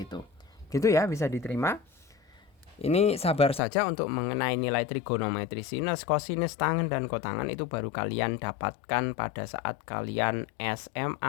Gitu ya, bisa diterima. Ini sabar saja untuk mengenai nilai trigonometri sinus, kosinus, tangen, dan kotangan itu baru kalian dapatkan pada saat kalian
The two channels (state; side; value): drops out; right; at 3.6 s